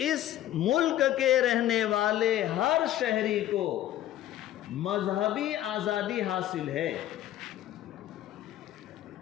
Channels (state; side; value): quieter; right; 13.0 dB